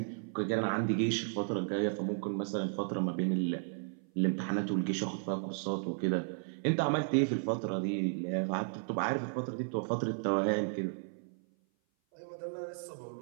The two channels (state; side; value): silent; left; 55 dB below the other